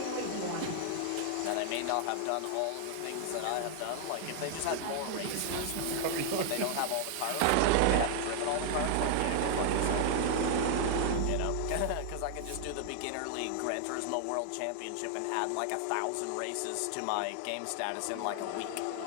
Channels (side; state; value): both; different; correlation 0.00